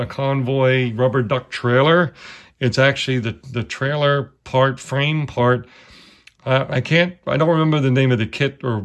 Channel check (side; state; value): both; identical; correlation 1.00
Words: Convoy rubber duck trailer. It's actually the trailer part, frame part. I don't remember the name of the kit or